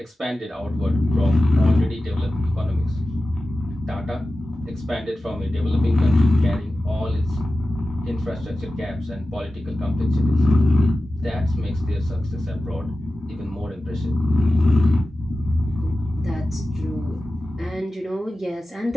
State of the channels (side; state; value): both; normal; correlation 0.94